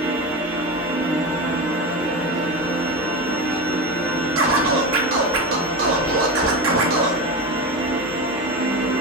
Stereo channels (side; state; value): both; normal; correlation 0.22